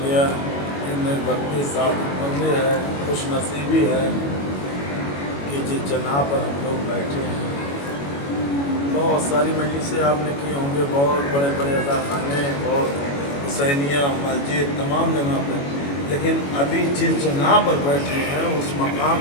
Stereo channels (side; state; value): right; late; 21 ms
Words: ان میں وقتی سعادت مندی ہے، خوش نصیبی ہے کہ جس جگہ پر ہم لوگ بیٹھے ہیں. بہت ساری مجلسیں آپ نے کی ہوں گے، بہت بڑے بڑے عزاخانے، بہت حسینیہ مسجد تمام جگہ پر، لیکن ابھی جس جگہ پر بیٹھے ہیں اس مقام